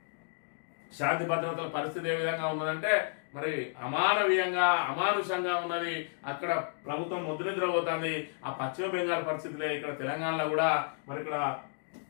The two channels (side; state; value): right; silent; digital silence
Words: శాంతి భద్రతల పరిస్థితి ఏ విధంగా ఉన్నదంటే మరి అమానవీయంగా అమానుషంగా ఉన్నది. అక్కడ ప్రభుత్వం ముద్రనిద్రపోతుంది. ఆ పశ్చిమ బెంగాల్ పరిస్థితులే ఇక్కడ తెలంగాణలో కూడా మరి ఇక్కడ